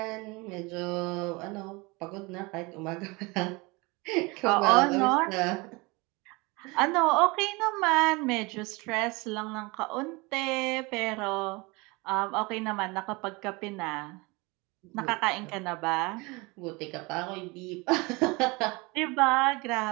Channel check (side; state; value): left; quieter; 25.7 dB